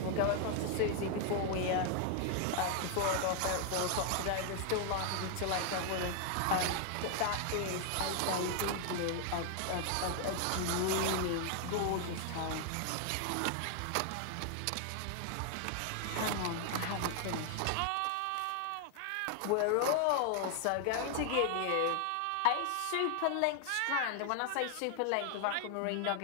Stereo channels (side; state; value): both; different; correlation 0.00